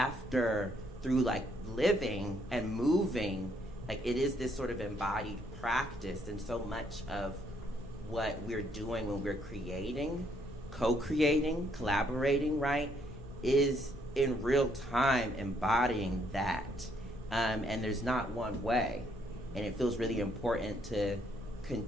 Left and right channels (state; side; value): normal; both; correlation 0.70